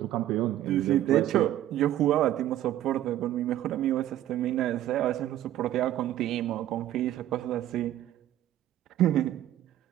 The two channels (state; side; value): quieter; left; 12.9 dB